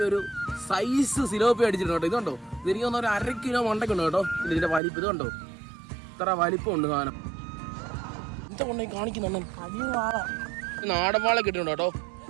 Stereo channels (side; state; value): left; drops out; at 4.8 s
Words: ഒരു സൈസ് സിലോപ്പി അടിച്ചിട്ടുണ്ട് കേട്ടോ. ഇതുണ്ടോ, ഇതെനിക്ക് തോന്നുന്ന ഒരു 1/2 കിലോ മണ്ടയ്ക്കുണ്ട് കേട്ടോ. ഇതിന്റെ വലിപ്പം ഇതുണ്ടോ, ഇത്ര വലിപ്പമുണ്ട് സാധനം. എന്താ കൊണ്ടേ കാണിക്കുന്നുണ്ട്, നാടൻ വാള കിട്ടുന്നുണ്ട് കേട്ടോ.